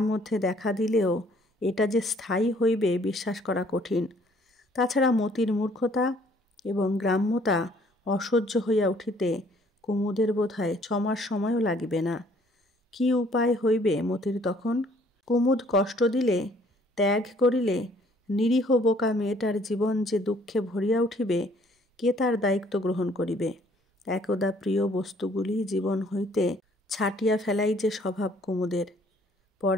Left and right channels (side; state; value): both; normal; correlation 0.60